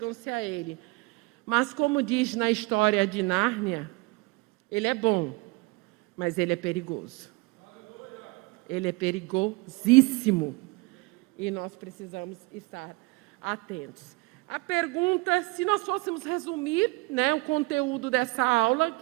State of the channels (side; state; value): left; quieter; 24.7 dB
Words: a Ele. Mas, como diz na história de Nárnia, Ele é bom, mas Ele é perigoso. Ele é perigosíssimo. E nós precisamos estar atentos. A pergunta, se nós fôssemos resumir, o conteúdo dessa aula,